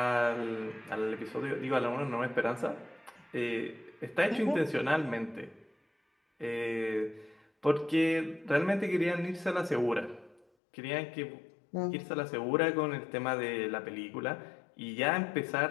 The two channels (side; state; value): right; drops out; at 10.5 s